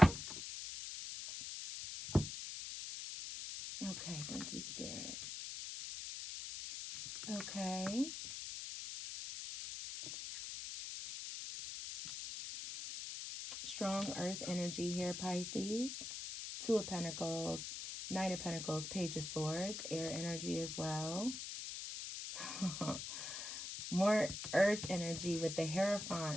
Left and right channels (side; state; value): left; noise; hiss, 6 dB below the sound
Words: Okay, thank you, Spirit. Okay. Strong earth energy here, Pisces. Two of Pentacles, Knight of Pentacles, Page of Swords, air energy as well. More earth energy with the